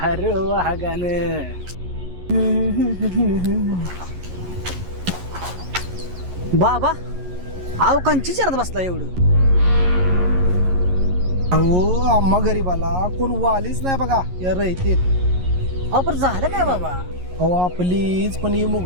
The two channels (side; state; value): left; late; 11 ms